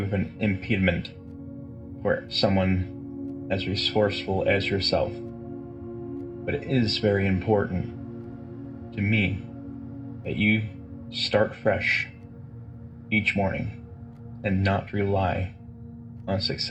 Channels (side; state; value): both; identical; correlation 1.00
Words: an impediment for someone as resourceful as yourself, but it is very important to me that you start fresh each morning and not rely on